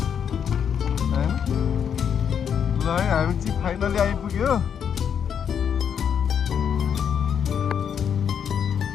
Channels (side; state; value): right; quieter; 7.9 dB